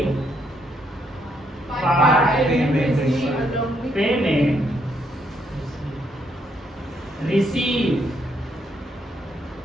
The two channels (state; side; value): normal; both; correlation 0.74